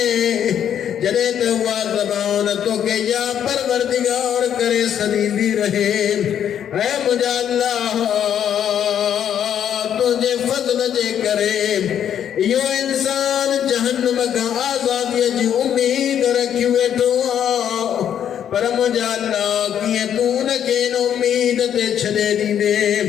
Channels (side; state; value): right; quieter; 9.4 dB